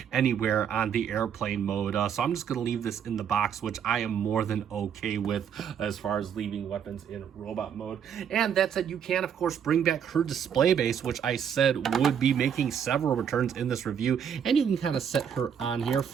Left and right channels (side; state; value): left; quieter; 8.1 dB